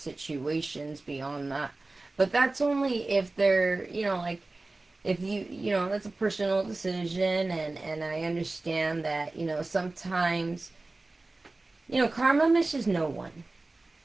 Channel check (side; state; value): left; quieter; 3.2 dB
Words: beyond that. But that's only if they're, like, if that's a personal decision, and I understand that, sometimes, karma misses no one.